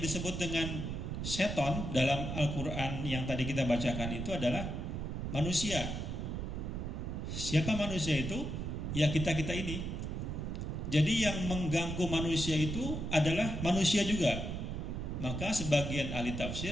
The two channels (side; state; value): right; noise; rumble, 4 dB below the sound